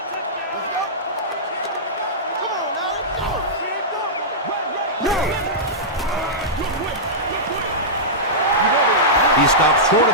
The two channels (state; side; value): normal; both; correlation -0.14